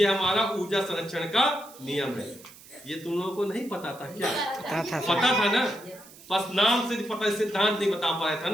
हमारा ऊर्जा संरक्षण का नियम है। ये तुम लोगों को नहीं पता था क्या? पता था ना, बस नाम से पता, सिद्धांत नहीं बता पाया था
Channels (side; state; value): right; noise; hiss, 21 dB below the sound